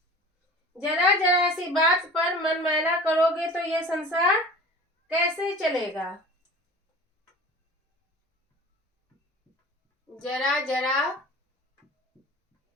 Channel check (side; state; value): both; normal; correlation 0.41